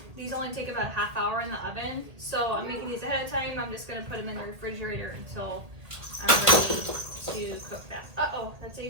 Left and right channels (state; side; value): late; left; 1.8 ms